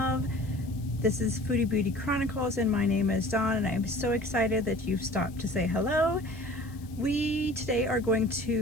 This is FoodiBeauti.Chronicles, and my name is Dawn, and I'm so excited that you've stopped to say hello. We today are going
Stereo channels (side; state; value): left; noise; hiss, 25 dB below the sound